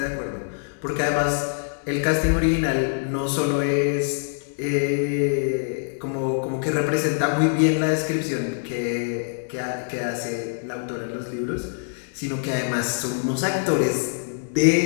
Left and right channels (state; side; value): silent; right; 62 dB below the other